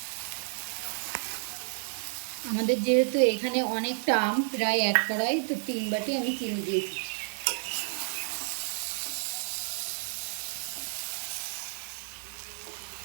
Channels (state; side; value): silent; left; 57 dB below the other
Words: আমাদের যেহেতু এখানে অনেকটা আম, প্রায় 1 কড়াই, তো 3 বাটি আমি চিনি দিয়েছি।